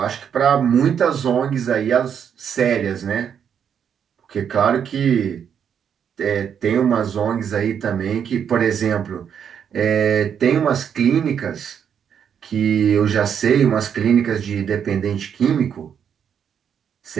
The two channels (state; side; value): quieter; left; 8.0 dB